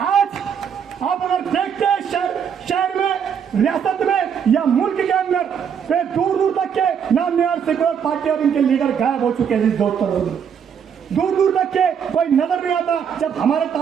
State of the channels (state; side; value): quieter; left; 7.6 dB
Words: आप अगर देखते हैं शहर में, रियासत में या मुल्क के अंदर तो दूर दूर तक के नाम निहार सेकुलर पार्टी और इनके लीडर गायब हो चुके हैं। दोस्तों दूर दूर तक के कोई नजर नहीं आता जब हमारे